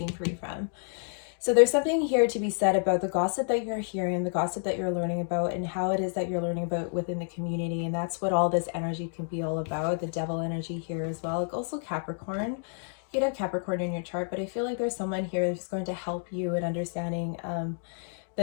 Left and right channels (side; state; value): right; silent; 58 dB below the other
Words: free from. So there's something here to be said about the gossip that you're hearing, the gossip that you're learning about, and how it is that you're learning about within the community. And that's what all this energy can be all about, the devil energy here as well. Like also Capricorn. You could have Capricorn in your chart, but I feel like there's someone here who's going to help you in understanding